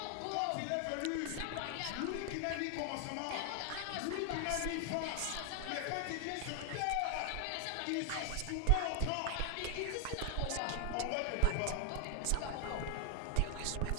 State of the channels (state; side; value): different; both; correlation 0.00